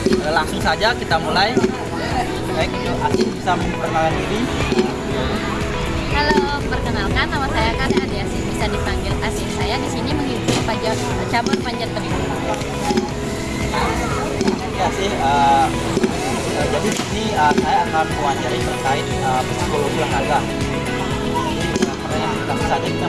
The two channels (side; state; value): both; identical; correlation 1.00